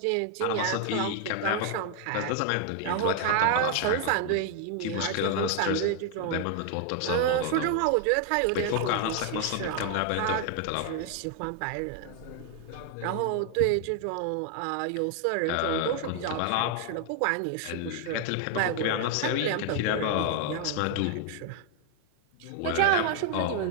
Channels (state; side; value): different; both; correlation 0.00